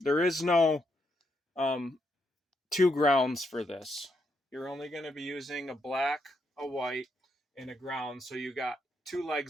is no 2 grounds for this. You're only going to be using a black, a white, and a ground. So you got 2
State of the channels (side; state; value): both; normal; correlation 0.79